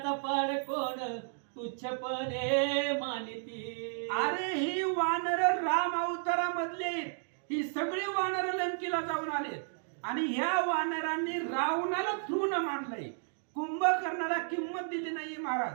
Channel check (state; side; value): silent; left; digital silence